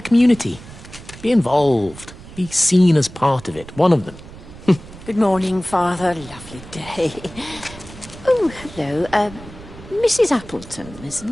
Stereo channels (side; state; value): right; noise; rumble, 17 dB below the sound